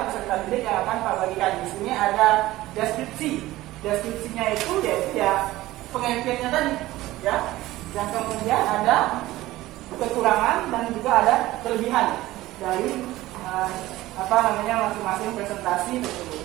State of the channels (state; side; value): quieter; left; 17.0 dB